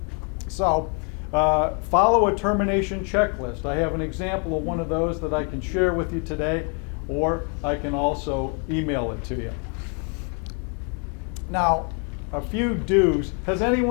So, follow a termination checklist. I have an example of one of those that I can share with you today, or I can also email it to you. Now, a few do's. Has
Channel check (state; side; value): quieter; right; 38.6 dB